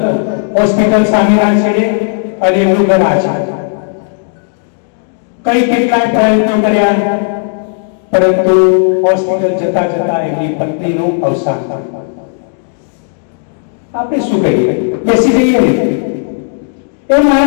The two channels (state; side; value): silent; right; digital silence